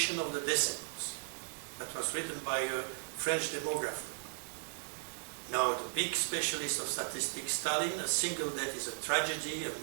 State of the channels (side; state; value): left; silent; 54 dB below the other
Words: of the decimals. That was written by a French demographer. Now, the big specialist of statistics, Stalin, a single death is a tragedy, a